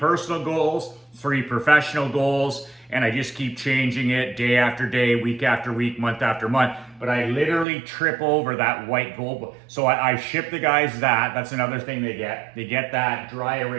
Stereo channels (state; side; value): drops out; left; at 7.7 s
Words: goals 3 professional goals, and I just keep changing it day after day, week after week, month after month. But I literally trip over that white goal book. So I ship the guys that. That's another thing they get. They get that dry